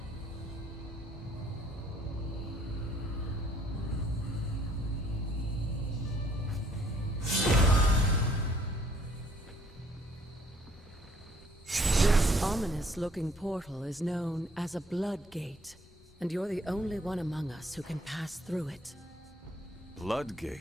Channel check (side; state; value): both; normal; correlation 0.62